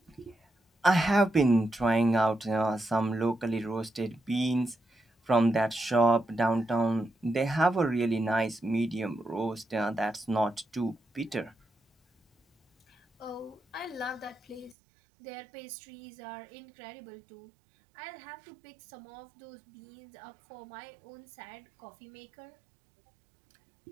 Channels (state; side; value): drops out; left; at 14.8 s